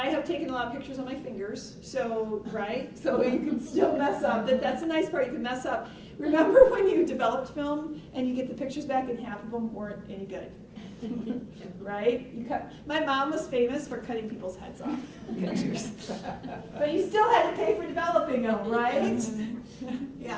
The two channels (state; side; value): identical; both; correlation 1.00